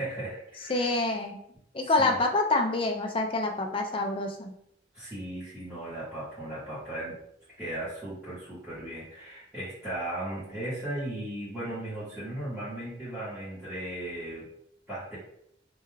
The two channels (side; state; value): both; normal; correlation 0.13